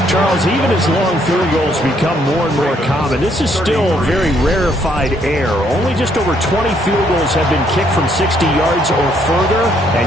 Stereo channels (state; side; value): normal; both; correlation 0.69